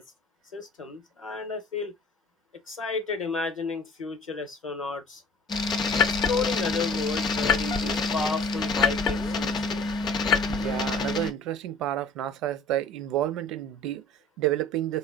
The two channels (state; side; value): normal; both; correlation 0.47